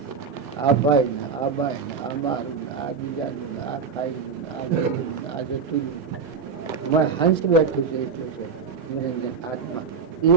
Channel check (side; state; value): left; quieter; 5.4 dB